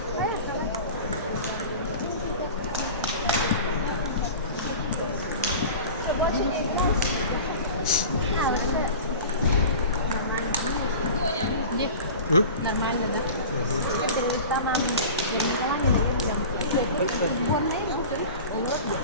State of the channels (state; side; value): inverted; both; correlation -0.36